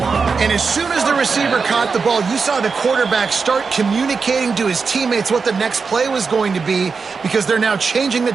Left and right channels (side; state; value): left; quieter; 5.1 dB